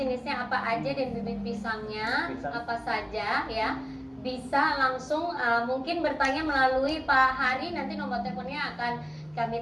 apa aja dan bibit pisangnya apa saja ya. Bisa langsung mungkin bertanya melalui Pak Hari, nanti nomor teleponnya akan kami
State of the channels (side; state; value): both; identical; correlation 1.00